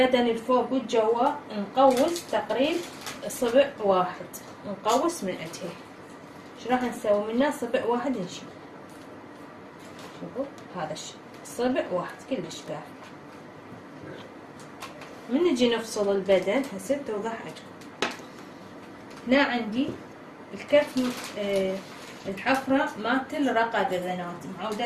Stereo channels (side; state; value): both; identical; correlation 1.00